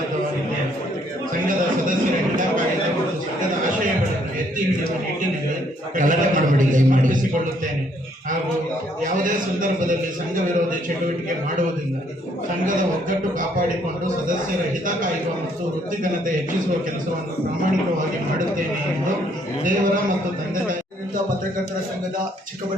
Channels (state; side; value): normal; both; correlation 0.67